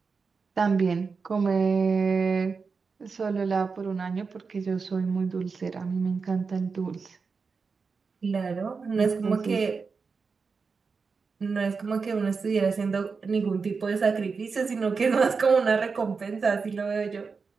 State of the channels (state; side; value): quieter; left; 5.0 dB